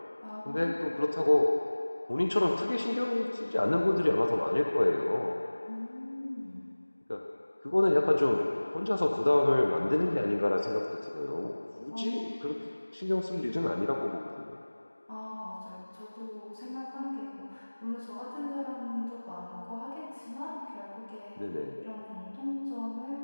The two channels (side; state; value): both; inverted; correlation -1.00